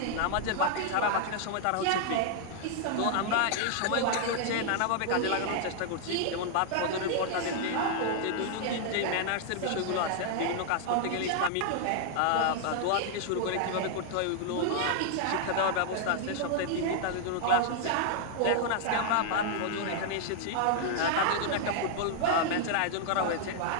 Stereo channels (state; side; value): different; both; correlation -0.01